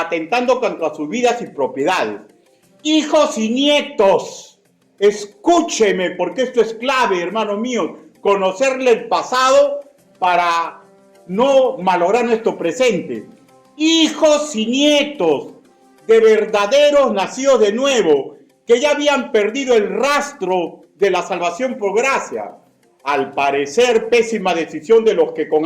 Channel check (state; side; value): identical; both; correlation 1.00